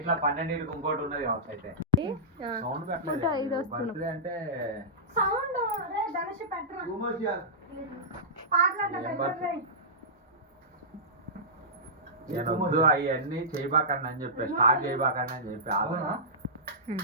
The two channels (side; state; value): both; normal; correlation -0.16